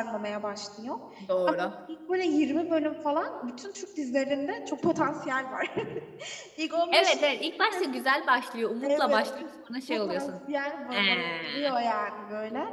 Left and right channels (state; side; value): identical; both; correlation 1.00